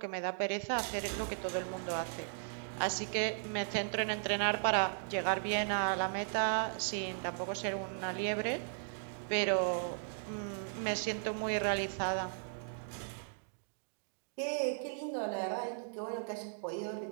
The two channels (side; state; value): left; silent; digital silence